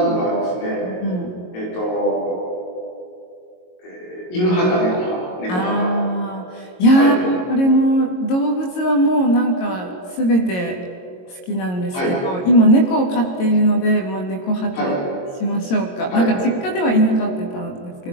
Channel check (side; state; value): right; late; 22 ms